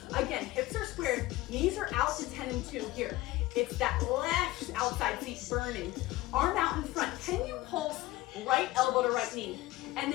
Again, hips are squared, knees are out to 10 and 2 here. It's that left outside seat burning. Arm out in front. Can you pulse right elbow to right knee? And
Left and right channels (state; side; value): quieter; right; 18.0 dB